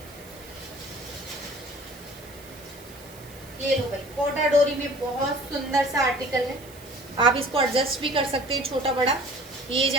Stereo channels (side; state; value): right; noise; hiss, 21 dB below the sound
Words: ये लो भाई, कोटा डोरी में बहुत सुंदर सा आर्टिकल है, आप इसको एडजस्ट भी कर सकते हैं छोटा बड़ा। ये